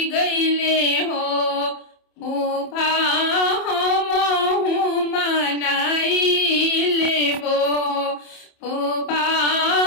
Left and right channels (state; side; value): late; right; 27 ms